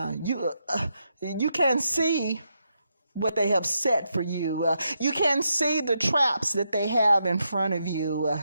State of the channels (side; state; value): both; inverted; correlation -0.82